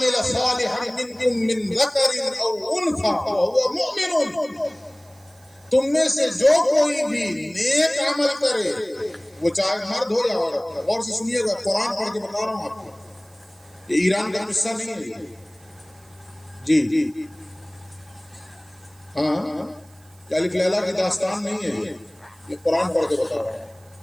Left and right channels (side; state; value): right; noise; hiss, 29 dB below the sound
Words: صالحا منکم من ذکر او انثى وهو مؤمن. تم میں سے جو کوئی بھی نیک عمل کرے، وہ چاہے مرد ہو یا عورت. غور سے سنیے گا، قرآن پڑھ کے بتا رہا ہوں آپ کو، یہ ایران کا قصہ نہیں ہے جی. ہاں الف لیلا کی داستان نہیں ہے، یہ قرآن پڑھ کے بتا رہا ہوں.